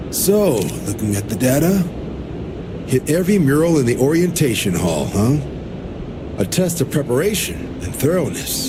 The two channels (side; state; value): both; identical; correlation 1.00